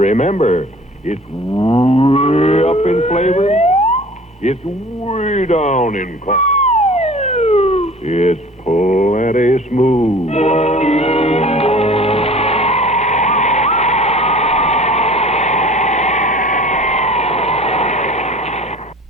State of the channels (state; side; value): normal; both; correlation 0.45